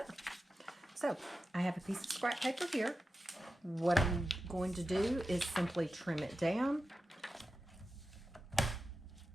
So I have a piece of scrap paper here. What I'm going to do is simply trim it down.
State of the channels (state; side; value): normal; both; correlation 0.92